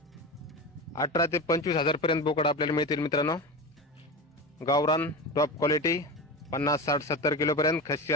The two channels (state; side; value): normal; both; correlation 0.25